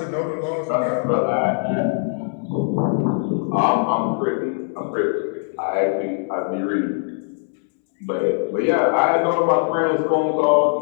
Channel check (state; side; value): silent; right; 65 dB below the other